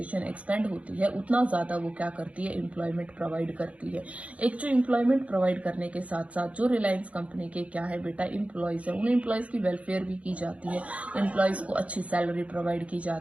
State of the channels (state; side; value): late; left; 0.064 ms